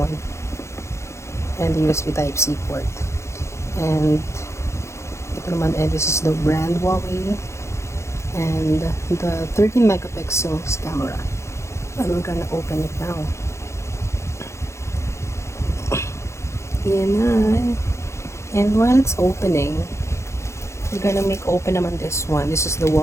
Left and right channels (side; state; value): right; late; 0.14 ms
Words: And the USB Type-C port. And ito naman, and this is the brand Huawei. And the 13 megapixels camera. And we're gonna open it now. Yan na. And while it's opening, we're gonna make open naman this one. This is the